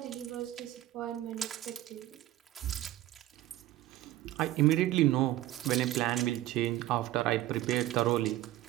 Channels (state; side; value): quieter; left; 14.9 dB